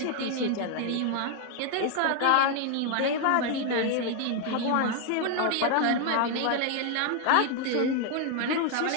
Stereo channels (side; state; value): both; different; correlation 0.00